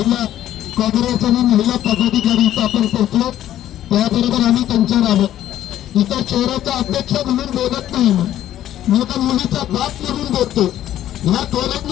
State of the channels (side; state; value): right; quieter; 12.3 dB